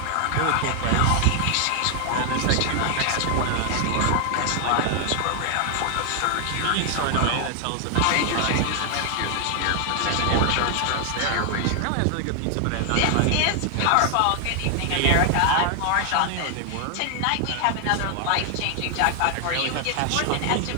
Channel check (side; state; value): both; different; correlation 0.00